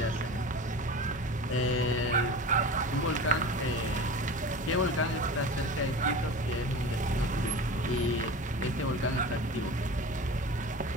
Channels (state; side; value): normal; both; correlation 0.33